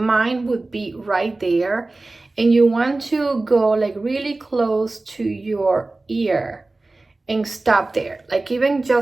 would be right there, and you want to go like really close to your ear and stop there, like even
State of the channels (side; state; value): left; quieter; 3.2 dB